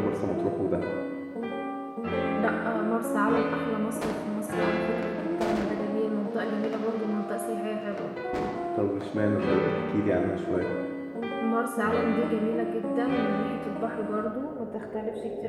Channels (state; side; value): identical; both; correlation 1.00